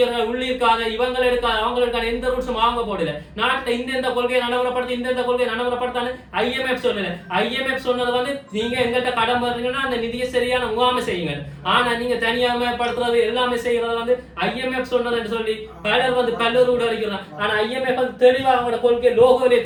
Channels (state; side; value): identical; both; correlation 1.00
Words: உள்ளிருக்காத இவங்க இருக்காது அவங்க இருக்காது எந்த ரூல்ஸும் வாங்க போடல. நாட்டில் இந்த கொள்கையை நடைமுறைப்படுத்தி இந்த கொள்கையை நடைமுறைப்படுத்தான்னு IMF சொல்லல. IMF சொன்னது வந்து நீங்க எங்கிட்ட கடன் பண்றீங்கன்னா அந்த நிதியை சரியான முகாமை செய்யுங்க. ஆனா நீங்க தனியாமப்படுத்துறது எல்லாமே செய்யறது வந்து IMF சொன்னது என்று சொல்லி பலர் வந்து கல்லூரி அடிக்கிறாங்க. ஆனா IMF வந்து தெளிவா அவங்களோட கொள்கை லோகோவிலே